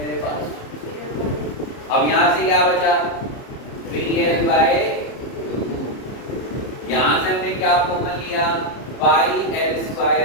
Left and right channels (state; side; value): late; right; 30 ms